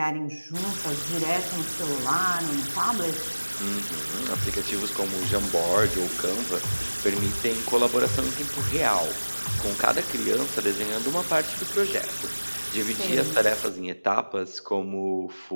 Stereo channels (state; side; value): inverted; both; correlation -1.00